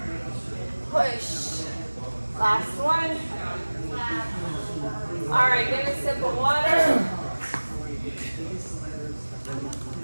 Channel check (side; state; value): both; inverted; correlation -1.00